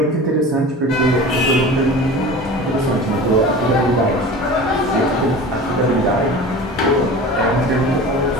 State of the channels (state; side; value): normal; both; correlation 0.36